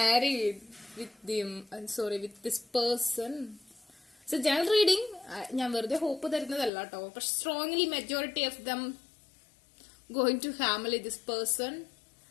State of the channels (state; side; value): drops out; right; at 6.7 s